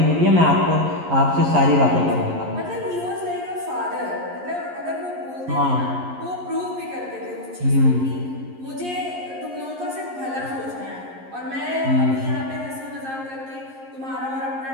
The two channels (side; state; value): left; late; 11 ms